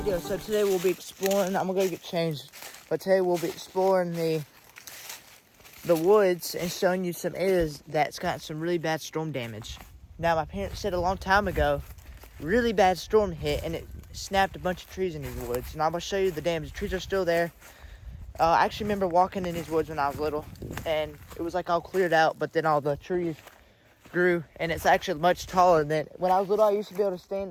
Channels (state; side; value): identical; both; correlation 1.00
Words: So today we'll be exploring. I'm gonna go get changed, but today we'll be exploring the woods and showing you some areas that's got some really bad storm damage. Now, my parents said a long time ago, really bad storm hit and it snapped a bunch of trees in these woods. And I'm gonna show you the damage. The trees are still there. I actually remember walking in these woods when I was little, and it was like all cleared out, but then all the trees grew, and it's actually much taller than when I was little. I used to be able to stand